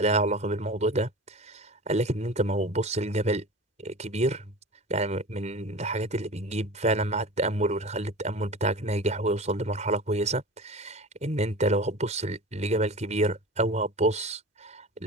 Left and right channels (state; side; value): normal; both; correlation 0.34